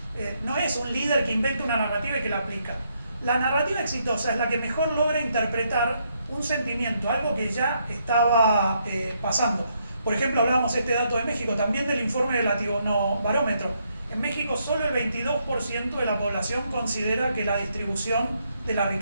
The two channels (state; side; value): inverted; both; correlation -0.76